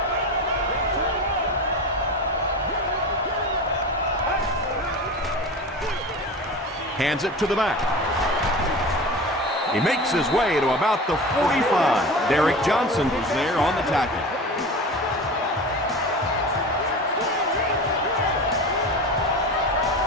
Hands it to the back. He makes his way to about the 45. Derek Johnson was there on the tackle.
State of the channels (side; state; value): both; normal; correlation 0.31